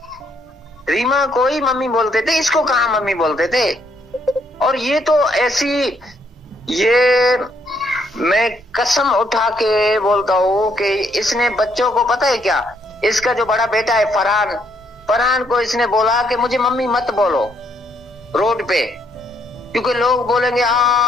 रीमा को ही मम्मी बोलते थे, इसको कहाँ मम्मी बोलते थे। और ये तो ऐसी, ये मैं कसम उठा के बोलता हूँ कि इसने बच्चों को, पता है क्या, इसका जो बड़ा बेटा है फरहान को इसने बोला कि मुझे मम्मी मत बोलो रोड पे, क्योंकि लोग बोलेंगे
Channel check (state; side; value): normal; both; correlation 0.72